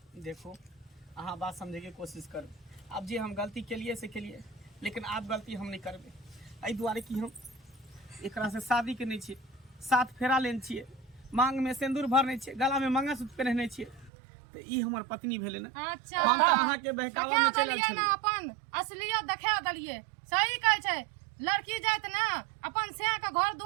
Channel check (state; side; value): drops out; left; at 14.1 s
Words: देखो अहाँ बात समझे के कोशिश कर। अब जे हम गलती के लिए से के लिए, लेकिन आप गलती हम नहीं करबे। एहि दुआरे कि हम एकरा से शादी के नहीं छिए, 7 फेरा लेन छिए, मांग में सिंदूर भरने छिए, गला में मंगलसूत्र पहनने छिए, तो ई हमर पत्नी भेले ना। अच्छा हम तो अहाँ के बहकावा में चलल देलियै छी। ना, अपन असलियत देखा देलियै। सही कहै छै, लड़की जात ना अपन से के घर